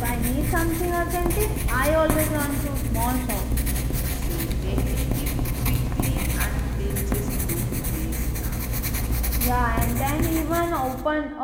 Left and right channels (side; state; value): both; identical; correlation 1.00